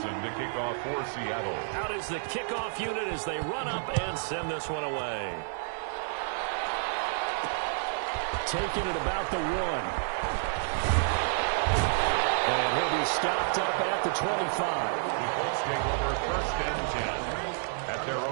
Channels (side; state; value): left; silent; digital silence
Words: to kick off for Seattle. Out is the kickoff unit as they run up and send this one away. Taking it about the 1. And he'll be stopped up at the 25. The Colts take over 1st and 10 at their